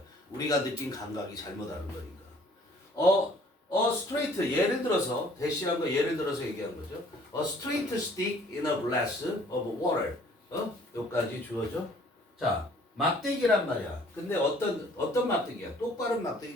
우리가 느낀 감각이 잘못하는 거니까. straight 예를 들어서 대시한 거 예를 들어서 얘기한 거죠. A straight stick in a glass of water. 여기까지 주어져. 자, 막대기란 말이야. 근데 어떤 막대기야? 똑바른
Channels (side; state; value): both; normal; correlation 0.56